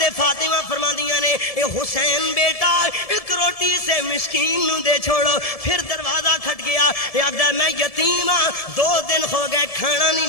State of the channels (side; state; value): right; late; 1.7 ms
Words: فاطمہ فرماندیاں نے اے حسین بیٹا ایک روٹی سے مسکین نو دے چھوڑو۔ پھر دروازہ کھٹ گیا، اے آکھدا میں یتیم ہاں، 2 دن ہو گئے کھانا نہیں